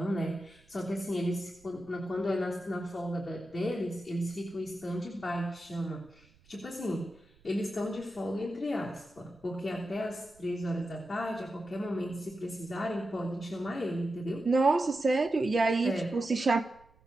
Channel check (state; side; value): noise; right; rumble, 29 dB below the sound